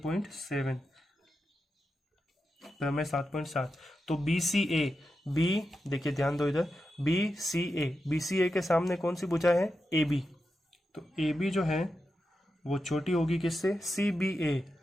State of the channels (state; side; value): normal; both; correlation 0.88